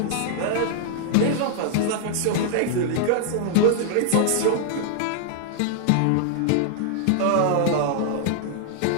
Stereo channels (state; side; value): different; both; correlation -0.01